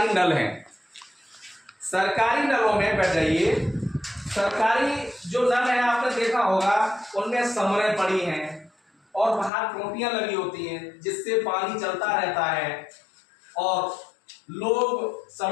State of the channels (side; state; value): right; drops out; at 9.5 s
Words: नल हैं। सरकारी नलों में बैठ जाइए। सरकारी जो नल है आपने देखा होगा, उनमें समरें पड़ी हैं और बाहर टोटियां लगी होती हैं जिससे पानी चलता रहता है। और लोग